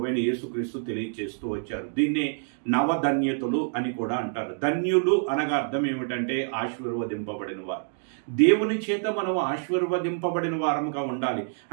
యేసుక్రీస్తు తెలియచేస్తూ వచ్చారు. దీన్నే నవధన్యతలు అని కూడా అంటారు. ధన్యులు అనగా అర్థం ఏమిటంటే ఆశీర్వదింపబడిన వారు. దేవుని చేత మనం ఆశీర్వదింపబడిన వారముగా ఉండాలి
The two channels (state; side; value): silent; left; digital silence